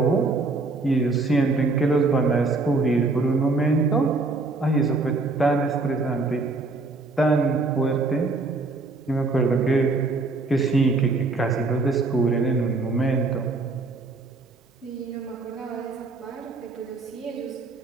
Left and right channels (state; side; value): quieter; left; 3.5 dB